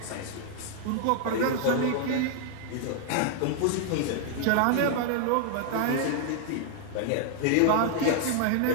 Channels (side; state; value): both; different; correlation 0.00